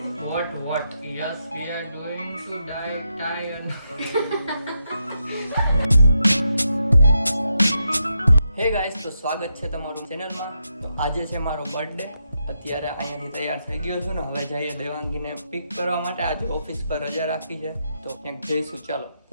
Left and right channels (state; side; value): inverted; both; correlation -0.83